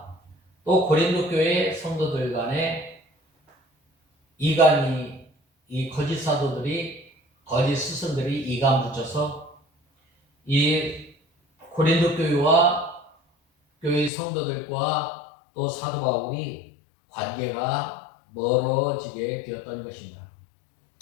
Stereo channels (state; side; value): drops out; right; at 14.1 s